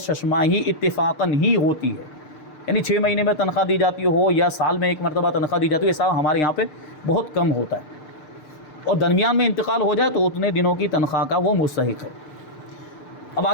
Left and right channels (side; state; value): right; late; 6.6 ms